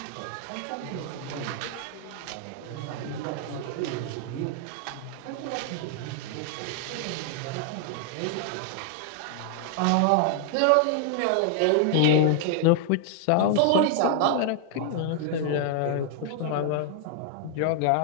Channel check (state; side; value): different; both; correlation 0.00